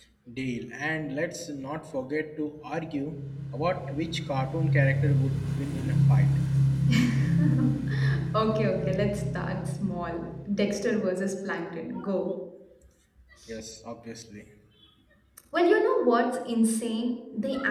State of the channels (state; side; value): identical; both; correlation 1.00